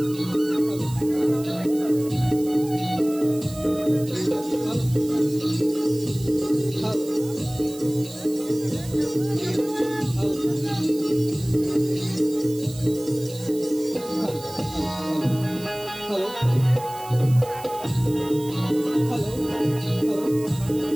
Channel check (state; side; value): noise; right; hiss, 17 dB below the sound